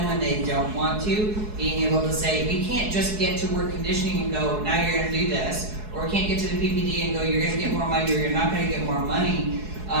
when they don't want to, being able to say, we can't just get to work conditioning and go, now you're gonna do this, or we can't get to the PPD and go, you're gonna get more money or you're not gonna get more money.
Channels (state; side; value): late; left; 4.7 ms